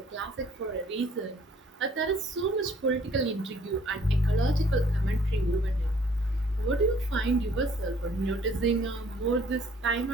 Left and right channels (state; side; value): normal; both; correlation 0.59